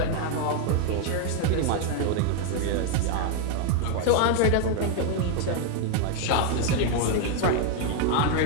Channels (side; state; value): both; different; correlation 0.01